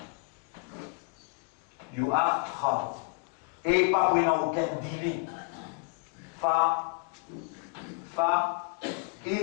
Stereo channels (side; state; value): right; quieter; 34.8 dB